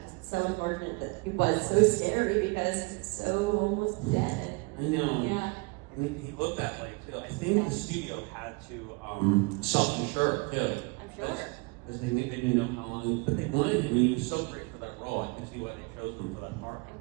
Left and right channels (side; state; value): left; quieter; 28.1 dB